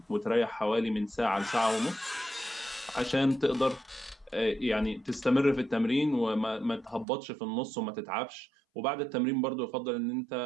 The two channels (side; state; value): left; drops out; at 7.1 s